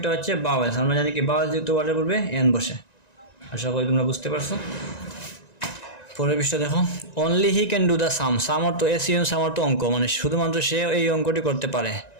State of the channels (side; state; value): right; late; 1.9 ms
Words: হচ্ছে বাওয়েলস। আমরা জানি কি বাওয়েলস যুক্ত ওয়ার্ডের পূর্বে এন বসে। আশা করি তোমরা বুঝতে পারছো। পরের পৃষ্ঠা দেখো, only he can do the same. Same অর্থ এসিএন, সাম অর্থ অঙ্ক, মানে শুধুমাত্র সে এই অঙ্কটি করতে পারে।